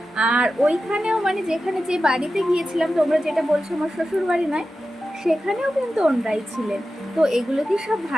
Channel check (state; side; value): normal; both; correlation 0.92